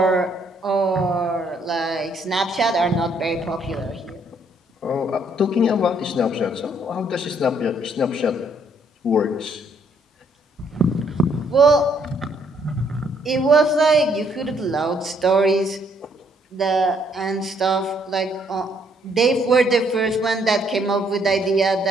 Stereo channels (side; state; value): both; normal; correlation 0.68